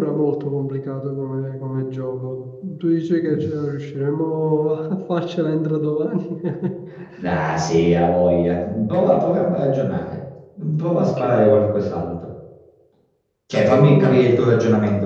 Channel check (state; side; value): identical; both; correlation 1.00